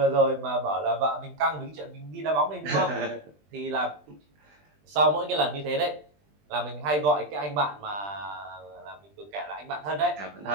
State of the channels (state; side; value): late; left; 20 ms